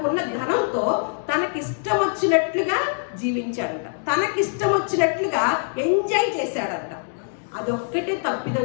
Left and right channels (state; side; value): silent; right; digital silence